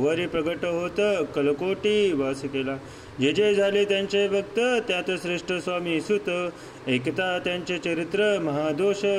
प्रगट होत कलकोटी वास केला. जे जे झाले त्यांचे भक्त त्यात श्रेष्ठ स्वामी सुत एकता त्यांचे चरित्र महादोष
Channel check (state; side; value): identical; both; correlation 1.00